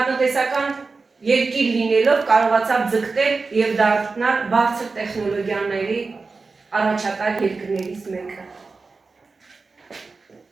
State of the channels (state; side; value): quieter; left; 4.1 dB